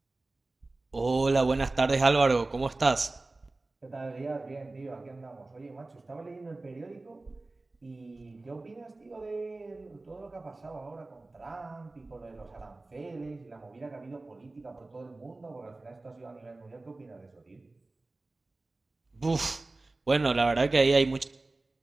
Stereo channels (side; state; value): left; quieter; 3.1 dB